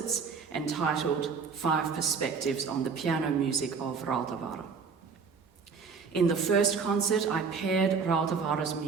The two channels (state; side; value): quieter; left; 5.5 dB